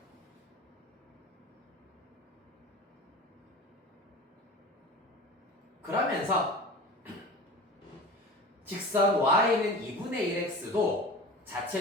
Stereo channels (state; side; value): normal; both; correlation 0.35